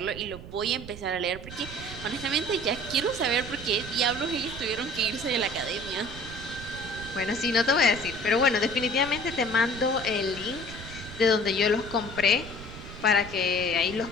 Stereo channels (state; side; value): noise; right; rumble, 13 dB below the sound